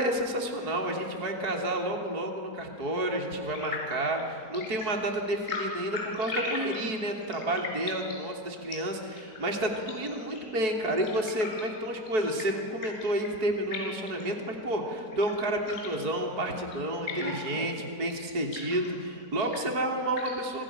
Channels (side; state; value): left; late; 4.6 ms